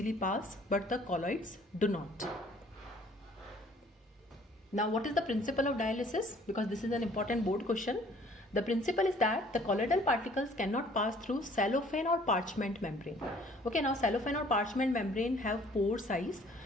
pass, but the colloids do not. Now, what is the principle of dialysis? Because this is an important board question. The principle is that the colloidal particles cannot pass through cellophane or parchment membrane. Okay, now cellophane or parchment membrane have pore size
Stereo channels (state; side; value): normal; both; correlation 0.56